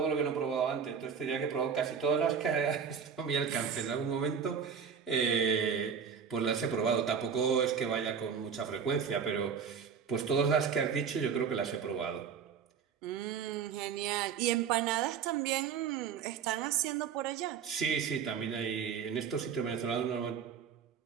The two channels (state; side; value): quieter; left; 6.9 dB